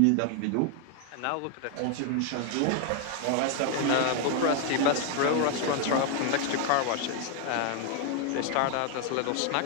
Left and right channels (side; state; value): both; different; correlation 0.01